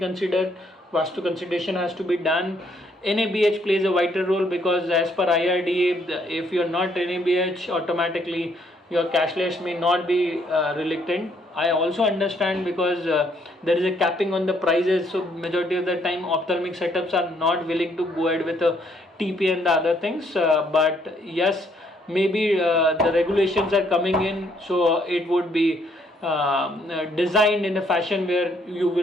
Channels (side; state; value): both; normal; correlation 0.69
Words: Vastu consideration has to be done. NABH plays a vital role, because as per IRDA, if you're not NABH, automatically your cashless may not be reluctant. I also understand, because there is a capping on the prices, so majority of the time ophthalmic setups are not willing to go ahead with a TP and the other things. But yes, maybe the regulations are coming in, so it would be designed in a fashion where you